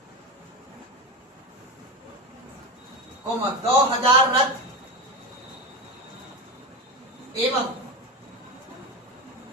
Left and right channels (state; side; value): normal; both; correlation 0.21